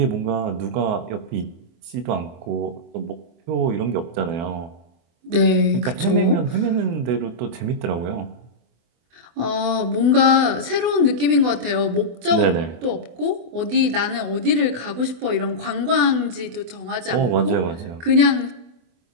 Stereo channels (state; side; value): late; left; 24 ms